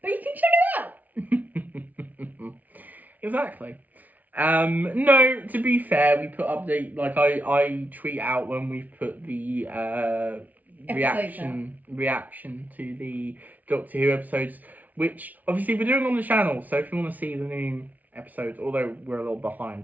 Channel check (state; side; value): late; left; 0.076 ms